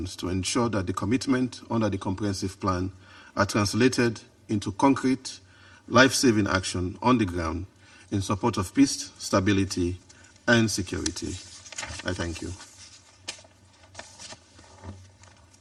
to ensure that the commitment under the comprehensive plan are translated into concrete, life-saving action on the ground in support of peace, stability, and security. I thank you.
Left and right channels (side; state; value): both; identical; correlation 1.00